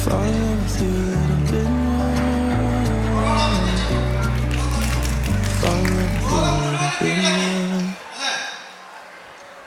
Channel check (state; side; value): identical; both; correlation 1.00